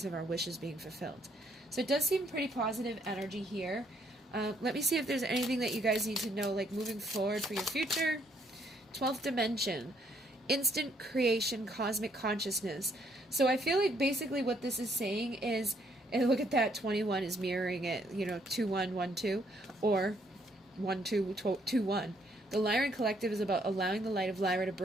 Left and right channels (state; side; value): normal; both; correlation 0.70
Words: of our wishes being fulfilled. So it does seem pretty positive energy here. Let me see if there's anything that you guys need to know, like moving forward for your future. 12th dimension, instant creation, cosmic consciousness. So I feel like basically what this is saying is, and look at that, 21 is mirroring it, you know, 2112, or 1221. The Lyran Collective is about allowing the light of Lyra to